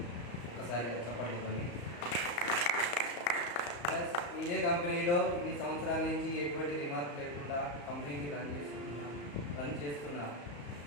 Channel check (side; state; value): right; late; 34 ms